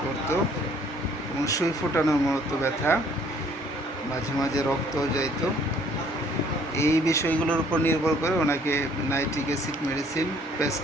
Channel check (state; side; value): normal; both; correlation 0.60